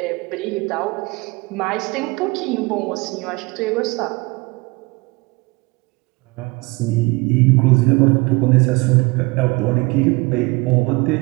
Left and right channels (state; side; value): quieter; left; 25.1 dB